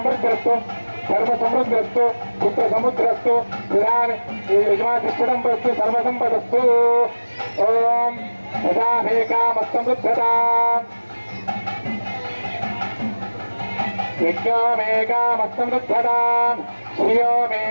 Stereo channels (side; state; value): both; inverted; correlation -1.00